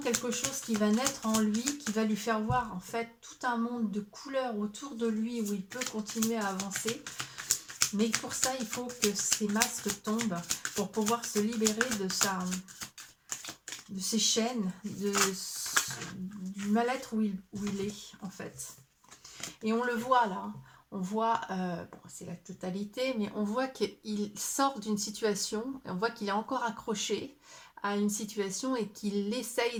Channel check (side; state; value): both; identical; correlation 1.00